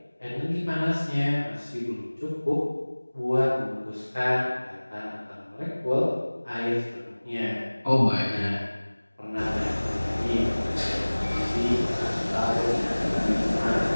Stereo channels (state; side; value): inverted; both; correlation -1.00